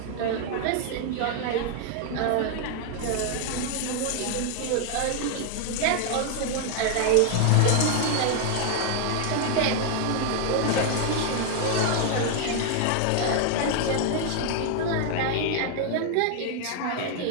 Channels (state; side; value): different; both; correlation 0.00